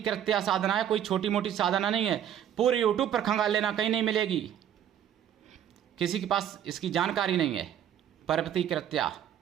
साधना है, कोई छोटी मोटी साधना नहीं है। पूरे यूट्यूब पर खंगाल लेना, कहीं नहीं मिलेगी, किसी के पास इसकी जानकारी नहीं है। पर्वती कृत्या,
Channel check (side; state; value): left; quieter; 10.2 dB